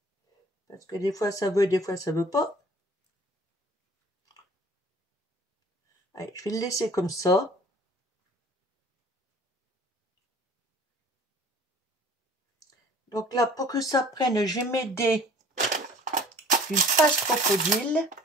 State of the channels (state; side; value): normal; both; correlation 0.50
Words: Parce que des fois, ça veut, des fois, ça veut pas. Allez, je vais le laisser comme ça. Donc là, pour que ça prenne, je vais m'aider d'une pâte crocodile.